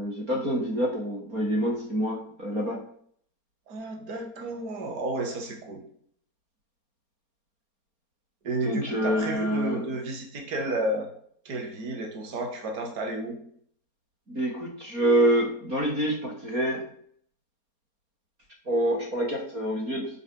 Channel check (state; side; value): late; left; 4.3 ms